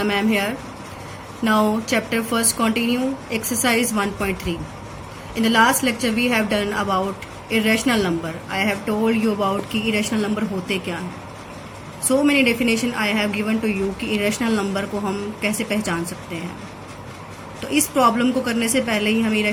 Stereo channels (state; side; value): identical; both; correlation 1.00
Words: ma'am here. Now chapter first continue, exercise 1.3. In the last lecture we have done about irrational number. I have told you about कि irrational number होते क्या हैं. So many definition I have given to you कि irrational number को हम कैसे पहचान सकते हैं. तो इस प्रॉब्लम को करने से पहले ही हमें